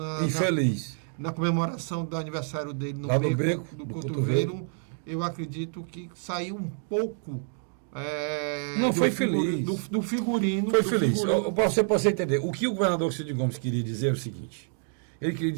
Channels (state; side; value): silent; left; 58 dB below the other